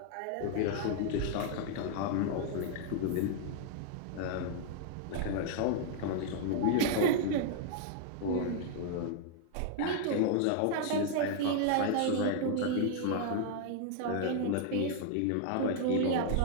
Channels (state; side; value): different; both; correlation 0.00